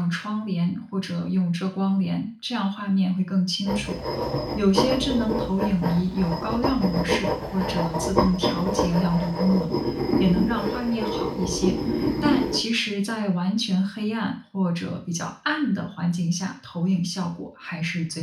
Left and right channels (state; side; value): identical; both; correlation 1.00